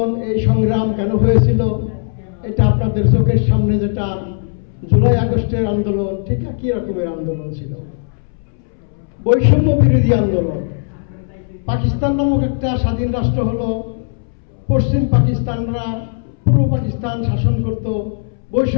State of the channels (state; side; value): silent; right; 68 dB below the other